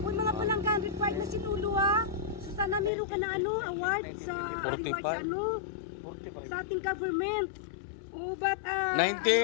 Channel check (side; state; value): right; drops out; at 2.9 s